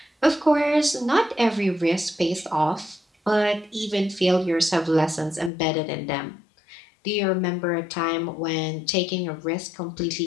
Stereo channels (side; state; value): right; drops out; at 5.5 s